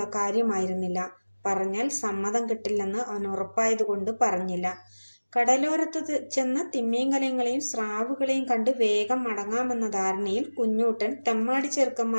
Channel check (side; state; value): both; inverted; correlation -1.00